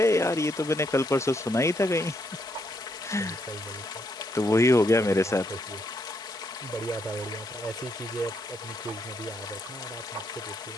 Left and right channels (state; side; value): normal; both; correlation 0.76